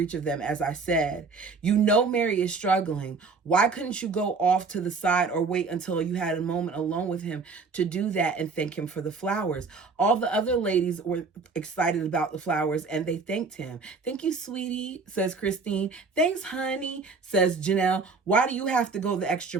of them, as I said. You know Mary is struggling. Why couldn't you go off to the side or wait until you had a moment alone with him to do that and thank him for the flowers? All the other ladies were excited about the flowers and they thanked him. Thank you, sweetie, says Christine. Thanks, honey, says Janelle. Why do you have to go the extra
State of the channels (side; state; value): left; quieter; 4.5 dB